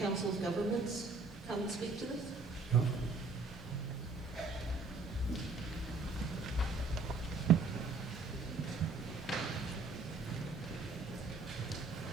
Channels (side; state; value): left; quieter; 3.9 dB